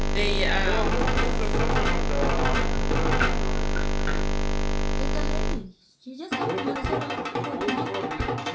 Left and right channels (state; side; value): identical; both; correlation 1.00